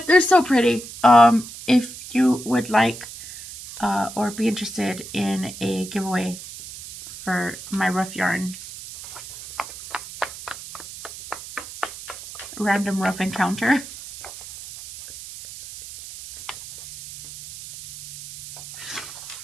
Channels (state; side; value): noise; right; hiss, 14 dB below the sound